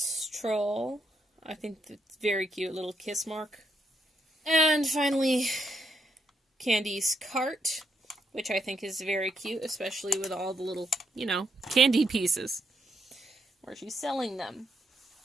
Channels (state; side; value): normal; both; correlation 0.77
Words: troll. I think it's very cute. Little kiss mark. And finally, Candy's cart, which I think is very cute, especially with all the little, candy pieces, where she's selling them.